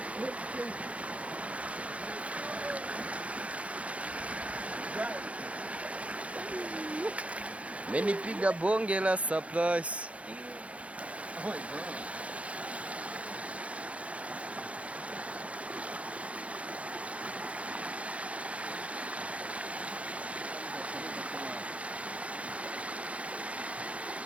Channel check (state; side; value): late; left; 0.064 ms